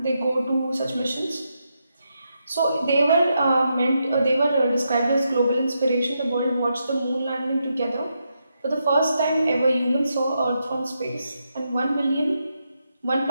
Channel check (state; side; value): inverted; both; correlation -0.83